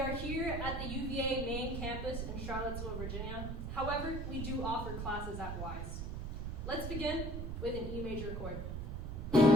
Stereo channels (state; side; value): noise; right; rumble, 4 dB below the sound